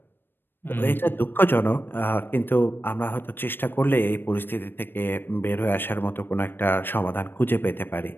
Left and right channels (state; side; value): late; right; 0.097 ms